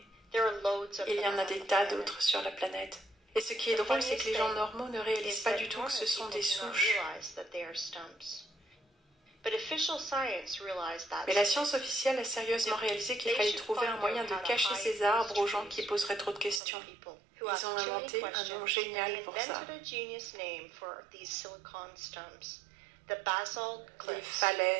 Il y en a des tas d'autres sur la planète. Et ce qui est drôle, c'est que les gens normaux ne réalisent pas du tout que ce sont des souches. Mais la science officielle a sérieusement réalisé qu'il fallait trouver un moyen de cacher ces arbres aux gens qui poseraient trop de questions. Ils ont inventé un nom génial pour ça. les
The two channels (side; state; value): left; drops out; at 16.6 s